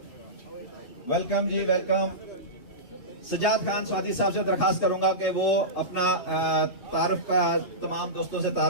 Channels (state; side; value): late; right; 3.2 ms